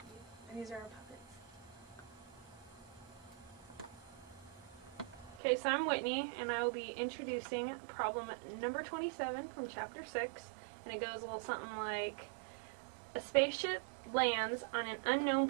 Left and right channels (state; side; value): drops out; left; at 5.4 s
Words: and these are our puppets. Okay, so I'm Whitney, and I will be introducing problem number 27 from chapter 6, and it goes a little something like, a spaceship lands on an unknown